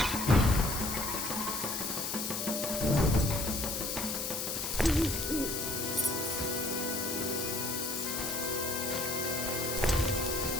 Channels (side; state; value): left; noise; hiss, 2 dB below the sound